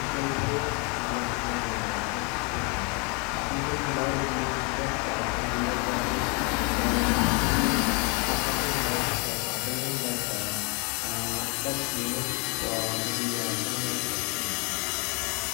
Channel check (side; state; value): right; quieter; 33.0 dB